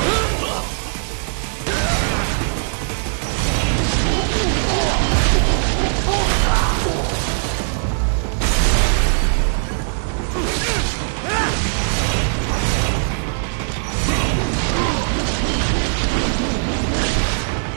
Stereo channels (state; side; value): silent; left; digital silence